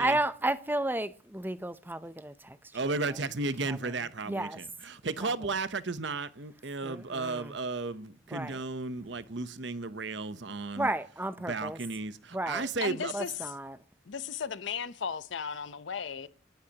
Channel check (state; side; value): normal; both; correlation 0.36